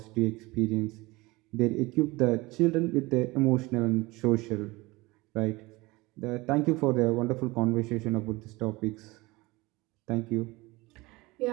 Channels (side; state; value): left; quieter; 22.2 dB